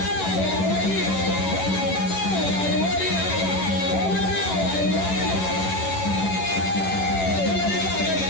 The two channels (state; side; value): late; right; 11 ms